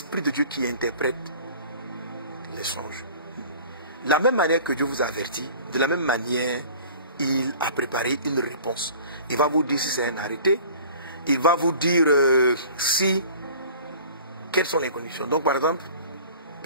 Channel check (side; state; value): both; inverted; correlation -0.45